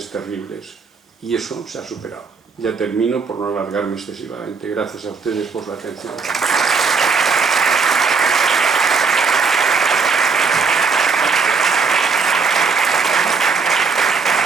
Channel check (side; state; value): left; quieter; 5.0 dB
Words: terribles. Y eso se ha superado. Ya termino por no alargarme excesivamente. Gracias a ustedes por la atención.